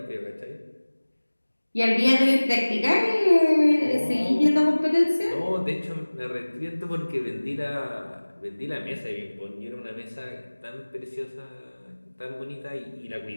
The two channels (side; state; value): both; inverted; correlation -1.00